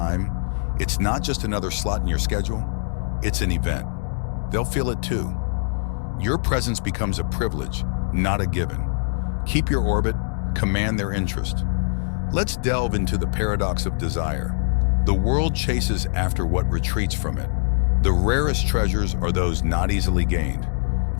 it's not just another slot in your schedule, it's an event. They'll feel it too. Your presence becomes a privilege, not a given. Keep your orbit, command their interest. Let's delve into the paradox of desire. The world chases after what retreats from it. The rarest treasures are those not easily gained.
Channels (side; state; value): right; silent; digital silence